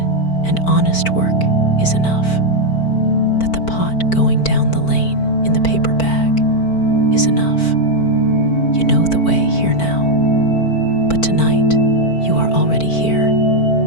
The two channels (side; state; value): right; late; 4.5 ms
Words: and honest work is enough, that the pot going down the lane in the paper bag is enough. You know the way here now, but tonight you are already here.